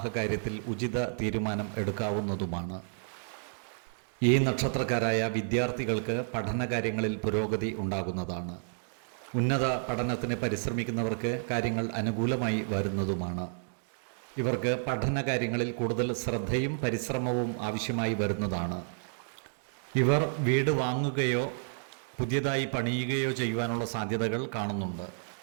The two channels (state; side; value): silent; left; digital silence